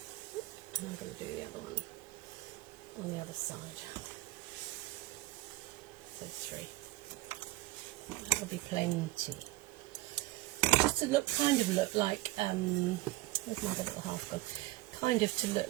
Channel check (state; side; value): quieter; left; 18.5 dB